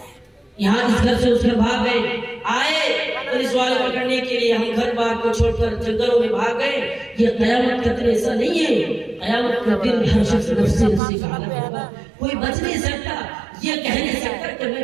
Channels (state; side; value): drops out; left; at 11.0 s